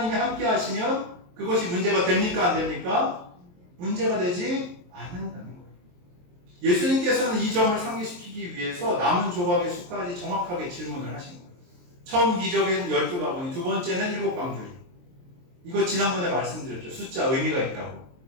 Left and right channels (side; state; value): left; late; 23 ms